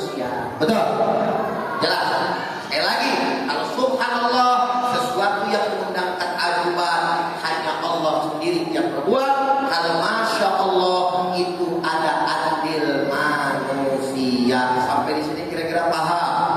betul? Jelas. Sekali lagi, kalau subhanallah sesuatu yang mengundang keaguman hanya Allah sendiri yang berbuat. Kalau Masya Allah itu ada adil manusia. Sampai di sini kira-kira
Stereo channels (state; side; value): identical; both; correlation 1.00